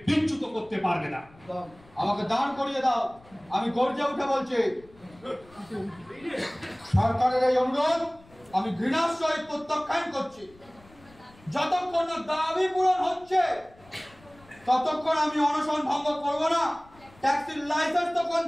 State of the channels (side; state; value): left; noise; rumble, 26 dB below the sound